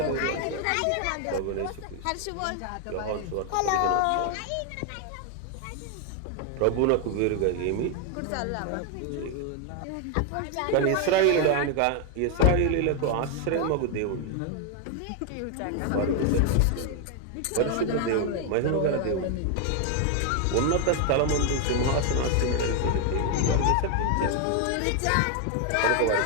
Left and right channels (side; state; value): both; different; correlation 0.00